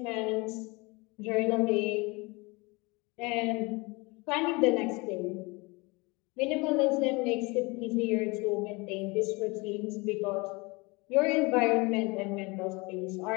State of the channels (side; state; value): right; quieter; 26.1 dB